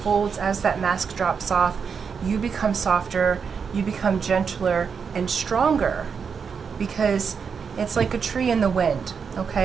as that mask drops off, you become softer, you become gentler and stronger, because it's like a tree in the wind,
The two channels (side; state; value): left; quieter; 6.1 dB